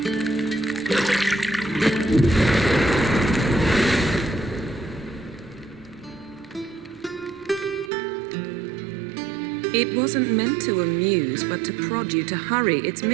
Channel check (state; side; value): drops out; left; at 7.9 s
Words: It wasn't meant to amuse, but to prod you to hurry. It's